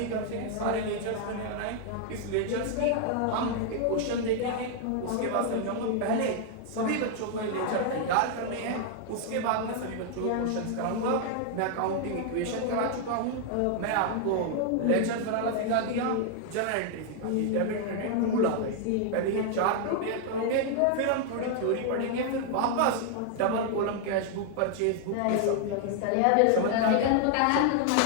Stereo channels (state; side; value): different; both; correlation 0.00